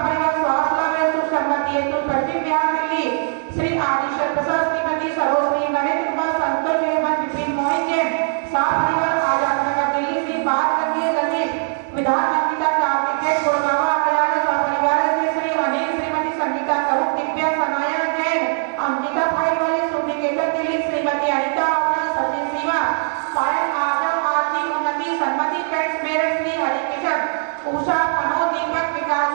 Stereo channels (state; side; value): silent; left; digital silence